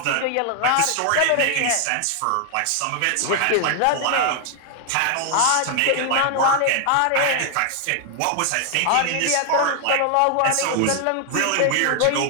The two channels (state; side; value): different; both; correlation 0.00